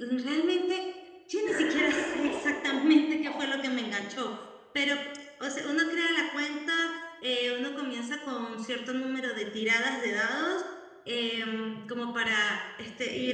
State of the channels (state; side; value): identical; both; correlation 1.00